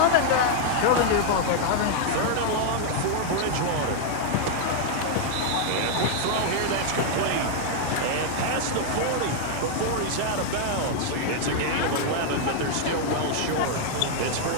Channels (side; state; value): both; different; correlation -0.01